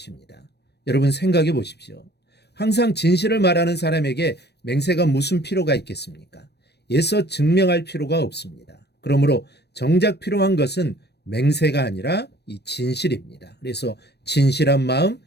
여러분 생각해 보십시오. 항상 진실을 말하는 사람에게 맹세가 무슨 필요가 있겠습니까? 애써 증명할 필요가 없습니다. 그러므로 정작 필요한 것은 맹세가 아니라 이 진실입니다. 그래서 진실한 마음,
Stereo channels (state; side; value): late; right; 0.48 ms